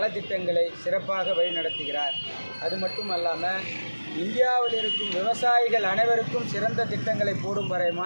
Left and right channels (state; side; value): inverted; both; correlation -1.00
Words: சிறப்பாக வழிநடத்துகிறார். அது மட்டுமல்லாமல் இந்தியாவில் இருக்கும் விவசாயிகள் அனைவருக்கும் சிறந்த திட்டங்களை போடும் வரை